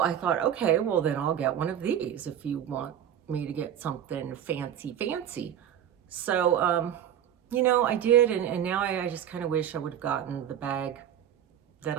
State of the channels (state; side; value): quieter; left; 9.9 dB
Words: thought, okay, well then I'll get one of these if you want me to get something fancy. So, I did, and now I just kind of wish I would have gotten the bag that